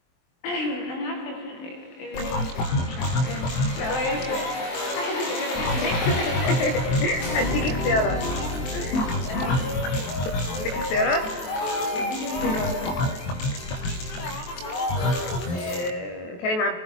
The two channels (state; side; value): late; right; 23 ms